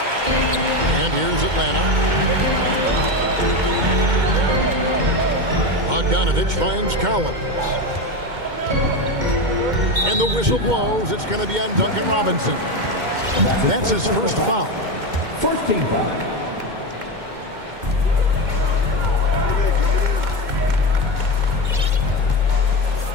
And here's Atlanta. Bogdanovich finds Collins. And the whistle blows. It's going to be on Duncan Robinson. That's his first foul. First team foul.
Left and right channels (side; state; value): left; late; 2.1 ms